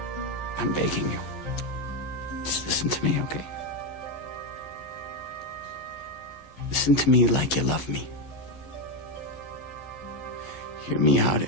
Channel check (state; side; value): late; right; 12 ms